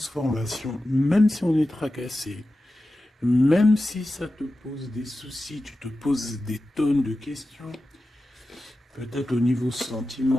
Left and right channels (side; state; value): both; normal; correlation 0.93